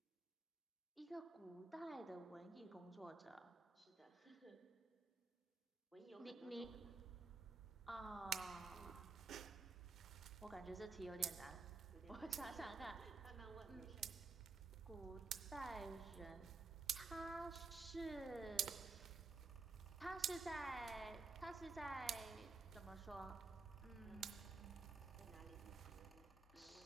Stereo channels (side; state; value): left; quieter; 4.4 dB